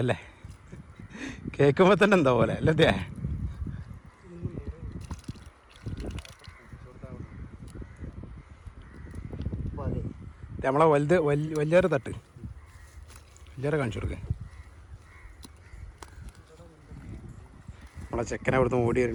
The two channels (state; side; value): identical; both; correlation 1.00